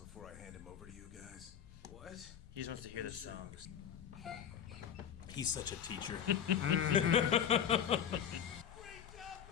I hand him over to you guys? What? He just wants to hear the song. He's such a teacher. Great job,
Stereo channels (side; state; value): right; quieter; 8.8 dB